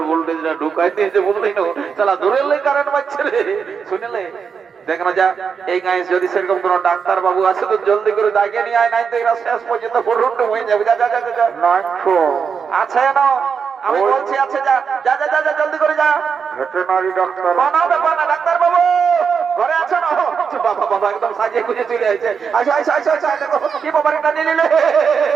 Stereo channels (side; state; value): left; quieter; 6.3 dB